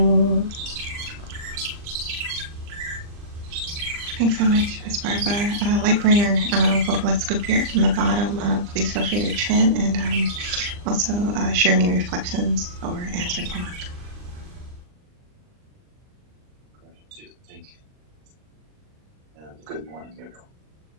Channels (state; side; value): late; left; 39 ms